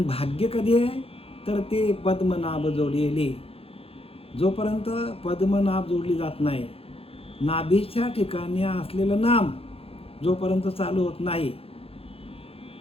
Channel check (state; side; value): late; right; 0.28 ms